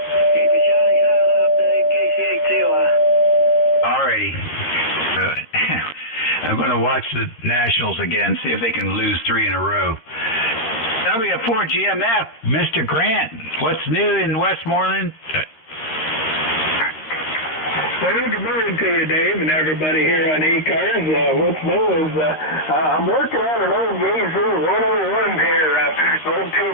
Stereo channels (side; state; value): right; late; 13 ms